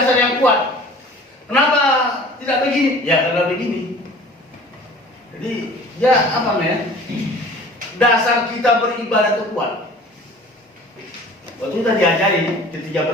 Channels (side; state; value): both; normal; correlation 0.45